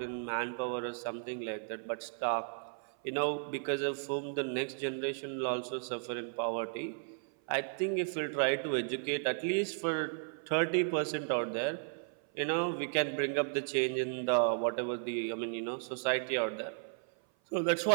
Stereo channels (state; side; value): silent; left; 55 dB below the other